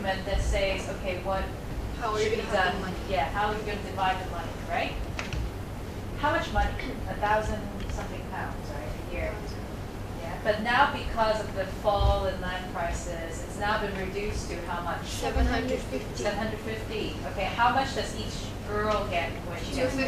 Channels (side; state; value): both; identical; correlation 1.00